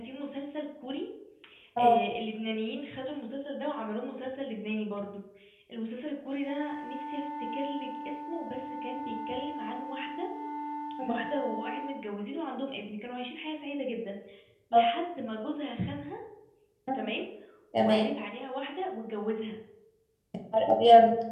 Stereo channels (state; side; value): identical; both; correlation 1.00